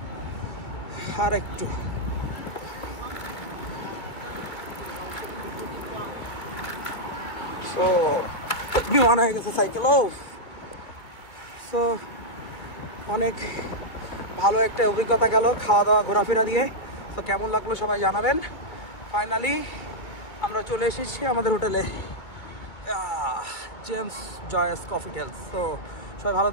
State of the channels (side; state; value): right; late; 2.2 ms